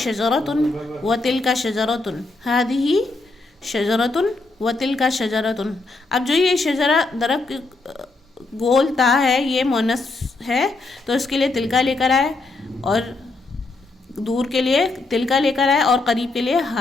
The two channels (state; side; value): quieter; right; 3.3 dB